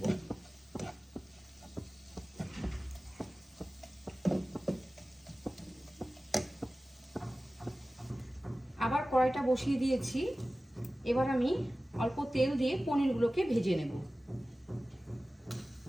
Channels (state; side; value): normal; both; correlation 0.96